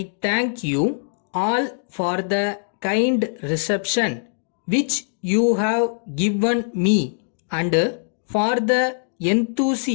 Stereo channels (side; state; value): right; silent; digital silence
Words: thank you all for the kind reception which you have given me and for the